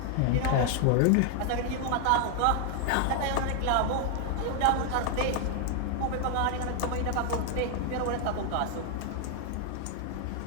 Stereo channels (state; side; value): different; both; correlation 0.00